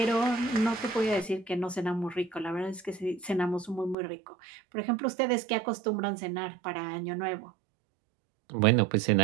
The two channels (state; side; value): drops out; left; at 4.0 s